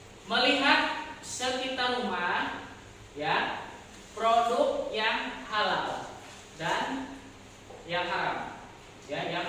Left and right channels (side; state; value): both; identical; correlation 1.00